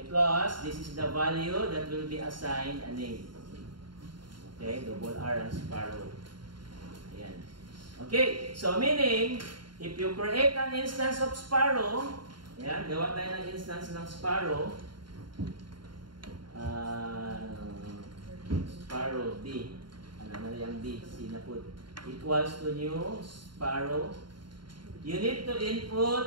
this is the value that will be assigned a name. Okay, double R ang sparrow. Ayan. Okay, so meaning, if you create an instance of sparrow, ayan, gawa tayo ng instance ng sparrow. Sparrow D. Ano na yung D? Sinaput. Equals to new sparrow. You need to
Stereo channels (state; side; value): late; left; 0.72 ms